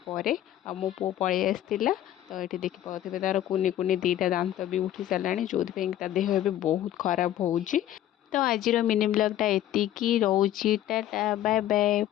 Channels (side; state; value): right; quieter; 12.4 dB